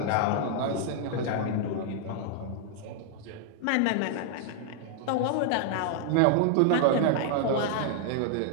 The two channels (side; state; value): both; different; correlation -0.01